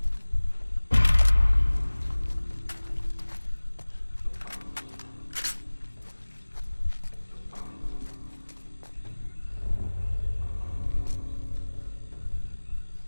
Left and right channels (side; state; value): both; inverted; correlation -1.00